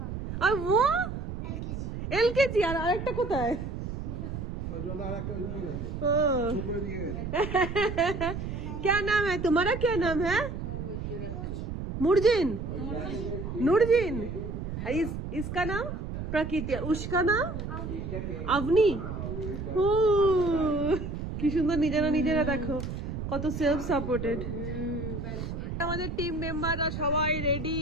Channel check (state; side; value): noise; right; rumble, 6 dB below the sound